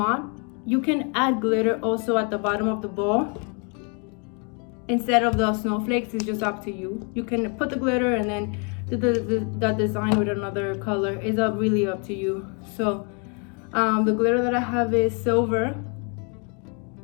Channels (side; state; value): right; quieter; 37.0 dB